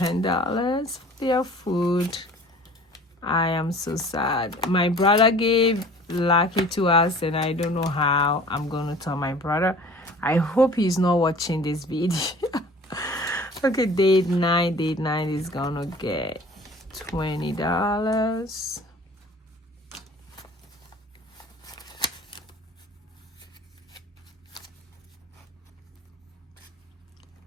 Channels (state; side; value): normal; both; correlation 0.46